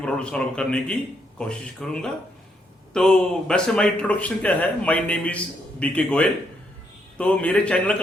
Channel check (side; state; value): both; normal; correlation 0.76